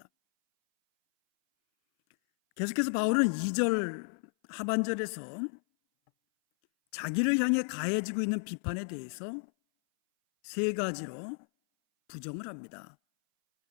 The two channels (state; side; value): silent; right; 56 dB below the other